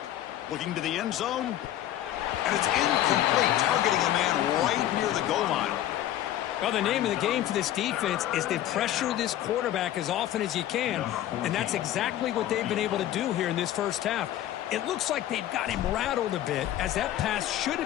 Looking to the end zone. And it's incomplete, targeting a man right near the goal line. Well, the name of the game for this defense is to pressure this quarterback as often as you can, and that's exactly what they've been able to do here in this first half. It looks like they've got him rattled a bit, as that pass should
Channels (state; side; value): quieter; right; 12.7 dB